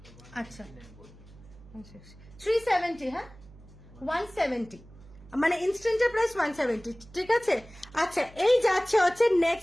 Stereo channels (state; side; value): noise; right; hum, 22 dB below the sound